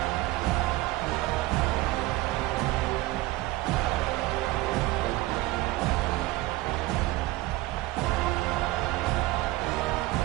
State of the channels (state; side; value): quieter; left; 18.7 dB